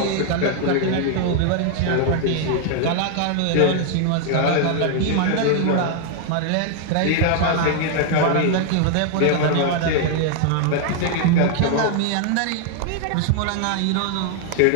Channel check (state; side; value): different; both; correlation 0.00